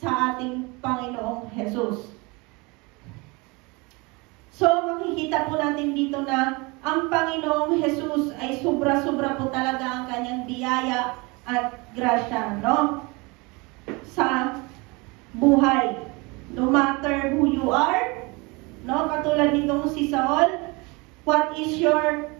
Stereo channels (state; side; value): quieter; left; 26.6 dB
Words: ating Panginoong Jesus. So, makikita po natin dito na ang Panginoong Jesus ay sobra-sobra po talaga ang kanyang biyaya at grasya, no? Sa buhay. No matter who you are, no? Katulad nitong si Saul, what is your